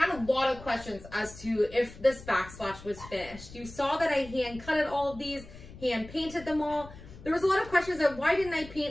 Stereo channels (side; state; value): left; noise; rumble, 17 dB below the sound